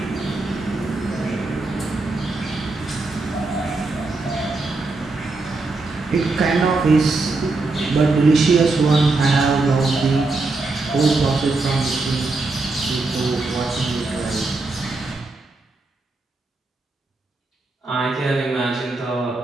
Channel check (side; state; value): left; quieter; 3.4 dB